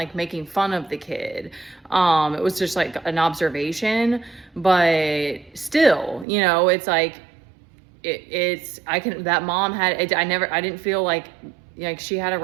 making fun of the kid. It was just like an observation, but still, it's like, that mom I didn't feel like she had a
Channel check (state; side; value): drops out; left; at 6.2 s